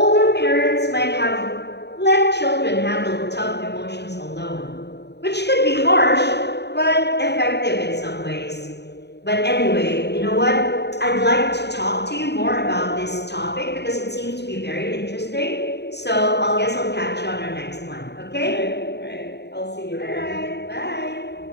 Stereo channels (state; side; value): late; right; 0.49 ms